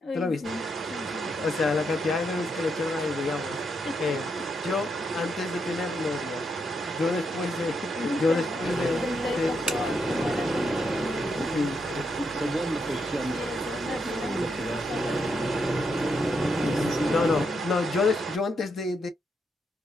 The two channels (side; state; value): both; normal; correlation 0.80